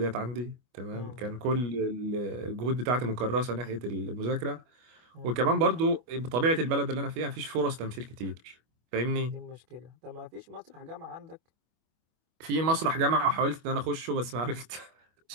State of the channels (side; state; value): left; late; 25 ms